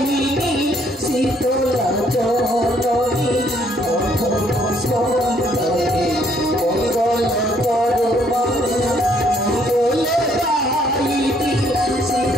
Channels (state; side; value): normal; both; correlation 0.66